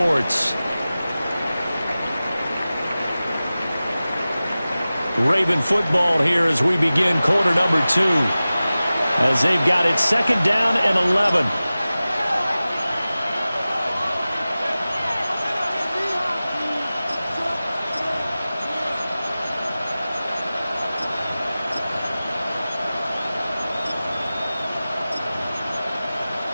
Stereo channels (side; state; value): both; inverted; correlation -0.96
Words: Raven football here as we begin quarter number 2. As they've got it 2nd down and 11.